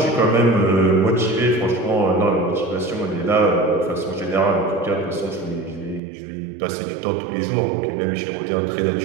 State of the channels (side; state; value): left; drops out; at 6.0 s